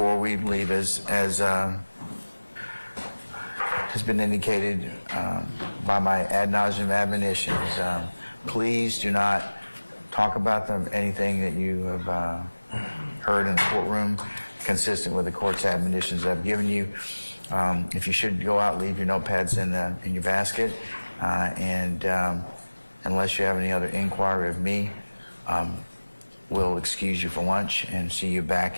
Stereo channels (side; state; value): both; inverted; correlation -1.00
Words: we leave, as has been indicated by my ad nauseum admonitions, please do not talk about anything that you have heard in the courtroom consistent with the court's admonitions I've given you. If you should go out, leave your notepads in your basket, and unless you have any other inquiry of me, we'll excuse you for lunch and see you